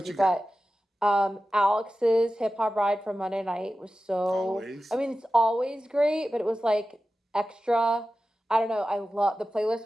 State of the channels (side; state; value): both; normal; correlation 0.94